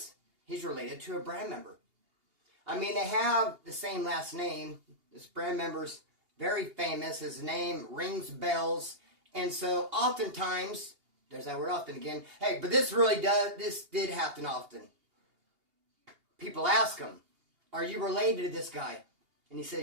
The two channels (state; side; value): late; left; 2.8 ms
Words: he's related to a brand member. I mean, they have the same last name. This brand member's very famous. His name rings bells. And so oftentimes, there's that word often again. Hey, but this did happen often. People ask him, are you related to this guy? And he